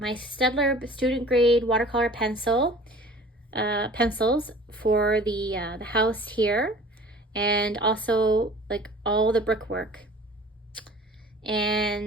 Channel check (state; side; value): normal; both; correlation 0.45